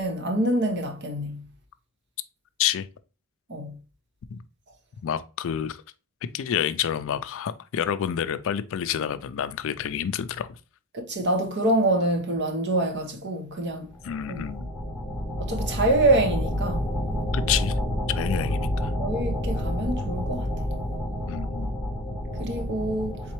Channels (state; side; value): normal; both; correlation 0.24